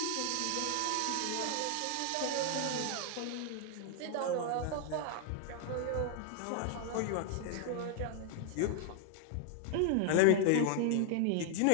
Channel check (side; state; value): both; different; correlation 0.00